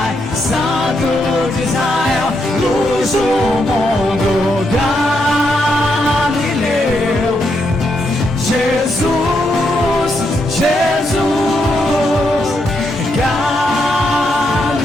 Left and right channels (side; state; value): both; normal; correlation 0.80